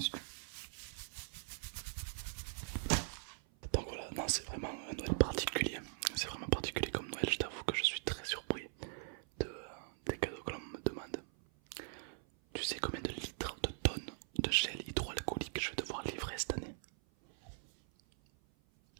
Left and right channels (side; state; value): left; silent; 51 dB below the other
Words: Donc voilà, non, c'est vraiment un Noël particulier. C'est vraiment particulier comme Noël, je t'avoue que je suis très surpris des cadeaux que l'on me demande. Tu sais combien de litres, de tonnes de gel hydroalcoolique je vais devoir livrer cette année?